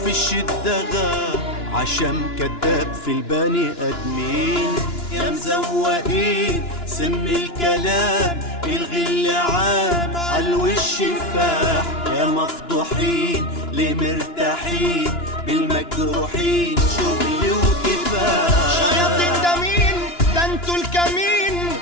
في الشدة غاب عشان كداب في البني ادمين. يا مزوقين سم الكلام، الغل عام عالوش فاح. يا مفضوحين ليه مرتاحين بالمجروحين، شغل وكفاح. شياطين ده مين؟ ده انتوا الكمين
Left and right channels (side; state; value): right; late; 2.9 ms